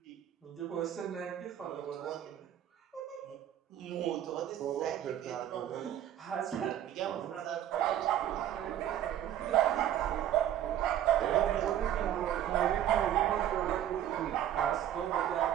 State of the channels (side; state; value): left; quieter; 11.2 dB